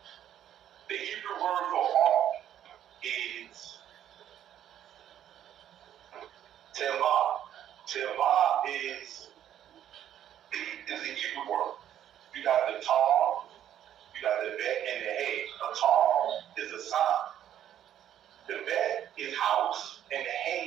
The Hebrew word for ark is tevah. Tevah is the Hebrew word. You got the tar, you got the bet, and the hay. A tar is a sign. The bet is house, and the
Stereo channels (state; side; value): quieter; left; 10.7 dB